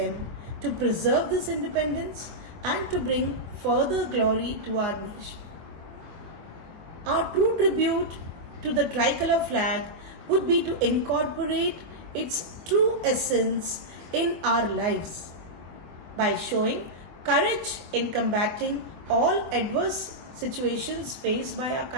to preserve this independence and to bring further glory to our nation. Our true tribute to the tricolor flag would be to incorporate its true essence in our lives by showing courage in combating all adverse situations faced by our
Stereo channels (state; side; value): late; left; 24 ms